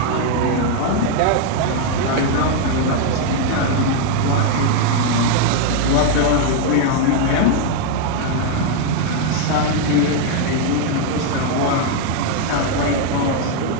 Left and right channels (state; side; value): different; both; correlation 0.00